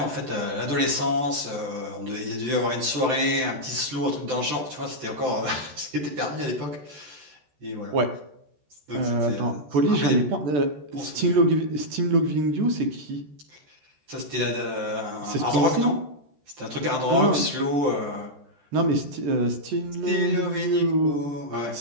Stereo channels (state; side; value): late; left; 14 ms